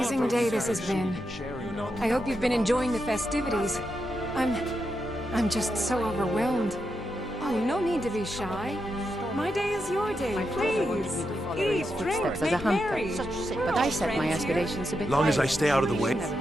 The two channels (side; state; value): both; normal; correlation 0.85